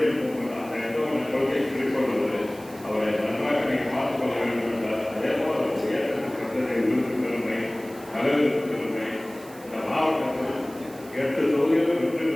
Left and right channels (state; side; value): noise; right; hiss, 21 dB below the sound